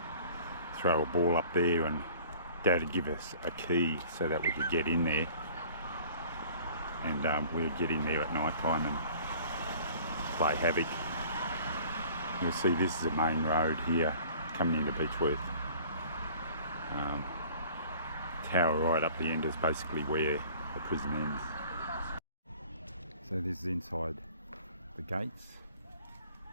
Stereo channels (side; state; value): both; inverted; correlation -0.49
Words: throw a ball up there, and Dad would give us a key so that we could get in there. And we would get in there at night time and play havoc. You'll see this is a main road here coming into Beechworth. Tower right up the end is basically where the prison ends. So this is inside the gates.